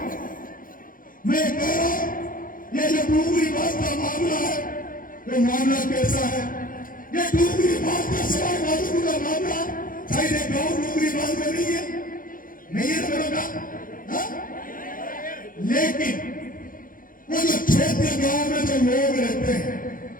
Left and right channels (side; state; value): right; late; 0.40 ms